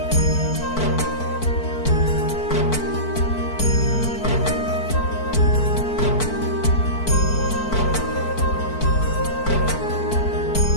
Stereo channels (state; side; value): late; right; 4.5 ms